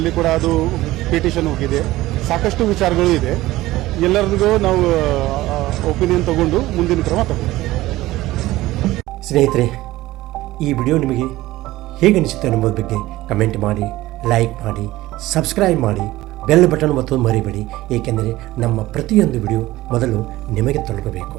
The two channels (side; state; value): left; quieter; 17.2 dB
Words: ಕೂಡ ಅದು ಪಿಟಿಷನ್ ಹೋಗಿದೆ. ಸಾಕಷ್ಟು ವಿಚಾರಗಳು ಇದೆ. ಎಲ್ಲರಿಗೂ ನಾವು ಒಪಿನಿಯನ್ ತಗೊಂಡು ಮುಂದಿನ ಕ್ರಮ ತಗೊಂಡು. ಸ್ನೇಹಿತರೆ, ಈ ವಿಡಿಯೋ ನಿಮಗೆ ಹೇಗೆ ಅನಿಸುತ್ತೆ ಅನ್ನೋದ್ರ ಬಗ್ಗೆ ಕಮೆಂಟ್ ಮಾಡಿ, ಲೈಕ್ ಮಾಡಿ, ಸಬ್ಸ್ಕ್ರೈಬ್ ಮಾಡಿ, ಬೆಲ್ ಬಟನ್ ಒತ್ತೋದು ಮರಿಬೇಡಿ. ಏಕೆಂದರೆ ನಮ್ಮ ಪ್ರತಿಯೊಂದು ವಿಡಿಯೋ ಮೊದಲು ನಿಮಗೆ ತಲುಪಬೇಕು.